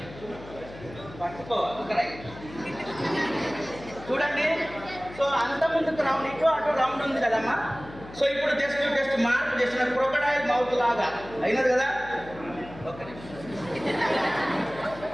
పట్టుకో. చూడండి, సో అంత ముందుకు రౌండ్, ఇటు అటు రౌండ్ ఉంది కదమ్మా. సో ఇప్పుడు జస్ట్ మార్పు చేసిన క్రొకడైల్ మౌత్ లాగా అయినది కదా. ఓకే,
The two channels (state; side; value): noise; left; hum, 16 dB below the sound